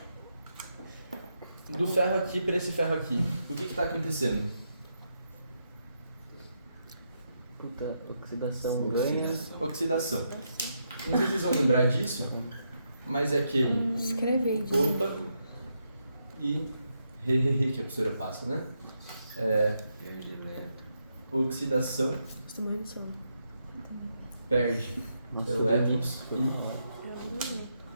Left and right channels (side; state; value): both; inverted; correlation -0.81